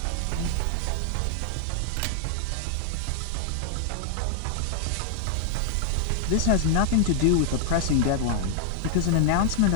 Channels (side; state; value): both; different; correlation 0.00